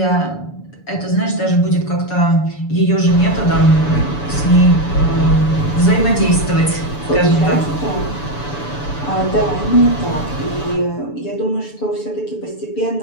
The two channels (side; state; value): right; late; 6.9 ms